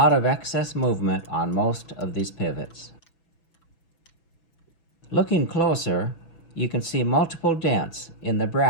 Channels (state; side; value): late; right; 6.0 ms